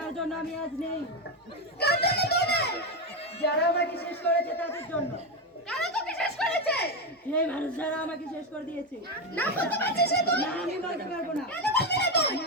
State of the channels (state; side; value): normal; both; correlation 0.11